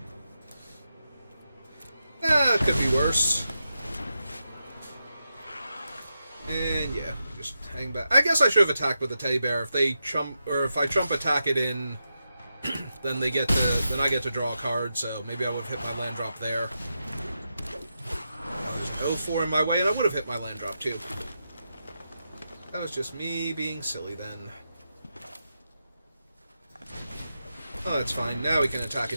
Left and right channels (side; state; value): both; inverted; correlation -0.87